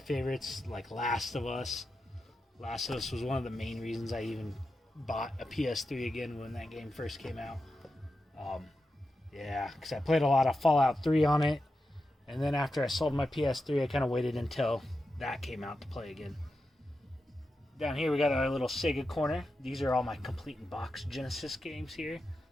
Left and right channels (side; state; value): both; normal; correlation 0.89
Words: like Last of Us. Last of Us was one of the main reasons I even bought a PS3 again when that game first came out. Because I played a lot of Fallout 3 on it. And then after I sold my PS3, I kind of waited until that came out to play again. Down here we got our little Sega corner. These are all my complete in box Genesis games here.